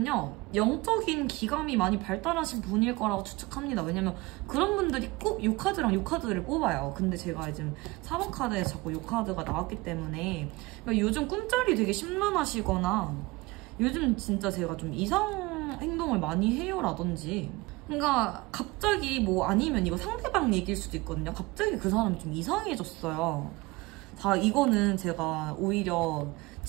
영적인 기감이 많이 발달하신 분일 거라고 추측합니다. 왜냐면 그런 분들이 꼭 이 카드랑 이 카드를 뽑아요. 근데 제가 지금 4번 카드에 자꾸 이 카드가 나왔기 때문에 그러니까 요즘 꿈자리 되게 심란하시거나 요즘 진짜 제가 좀 이상 행동을 많이 해요 라든지 그러니까 갑자기 뭐 아니면 이거 상대방 얘기일 수도 있거든요. 갑자기 그 사람이 좀 이상해졌어요. 자, 이거는 제가 오히려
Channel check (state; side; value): quieter; left; 22.6 dB